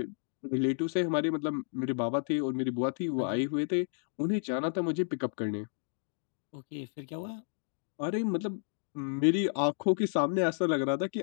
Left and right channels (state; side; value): silent; right; digital silence